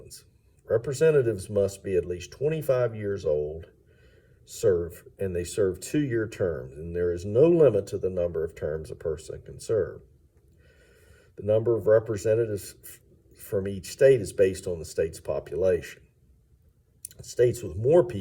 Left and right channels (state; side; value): identical; both; correlation 1.00